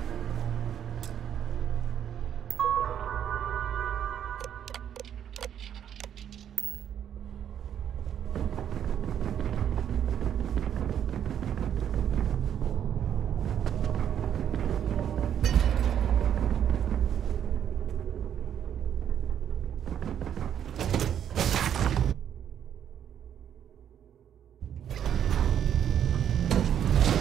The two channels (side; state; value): left; quieter; 9.5 dB